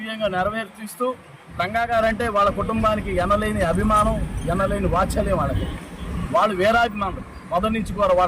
నెరవేర్చిస్తూ రంగా గారంటే వాళ్ళ కుటుంబానికి ఎనలేని అభిమానం, ఎనలేని వాత్సల్యం వాళ్ళకి. వాళ్ళు వీరాభిమానులు మొదటి నుంచి కూడా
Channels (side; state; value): both; identical; correlation 1.00